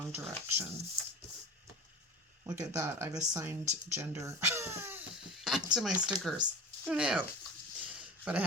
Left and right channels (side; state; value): both; normal; correlation 0.33